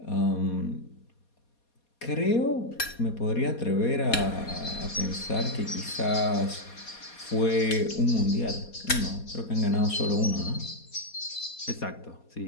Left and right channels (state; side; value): late; right; 4.2 ms